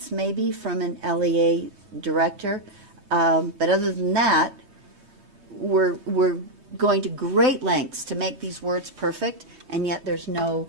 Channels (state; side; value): late; left; 3.2 ms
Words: maybe from an LEA director. But other than that, we're going to great lengths to make these words perfect, and yet there's no